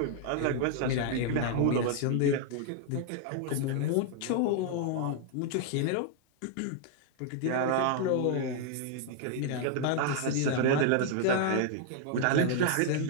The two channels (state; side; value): different; both; correlation 0.00